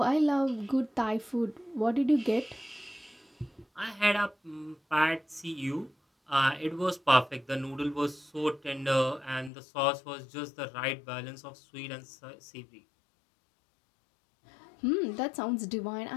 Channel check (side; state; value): right; drops out; at 9.5 s